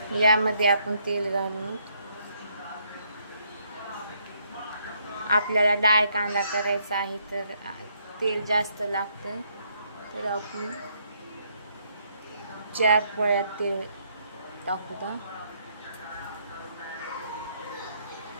यामध्ये आपण तेल घालून, आपल्याला डाळ कांदा करायचा आहे तर तेल जास्त लागतं, तर आपण 4 पळ्या तेल टाकूया.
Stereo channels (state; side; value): inverted; both; correlation -0.72